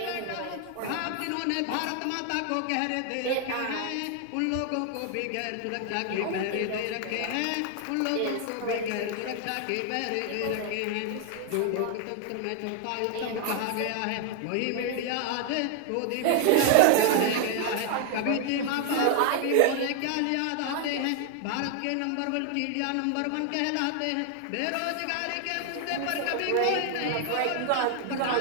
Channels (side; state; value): both; different; correlation 0.00